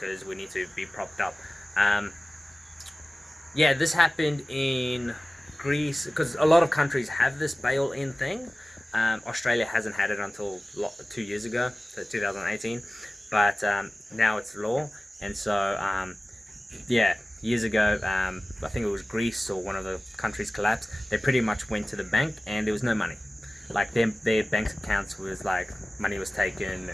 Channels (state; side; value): normal; both; correlation 0.97